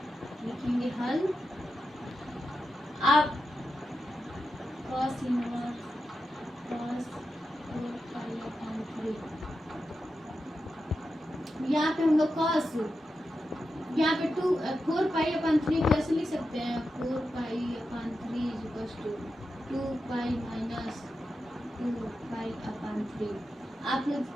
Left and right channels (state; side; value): normal; both; correlation 0.89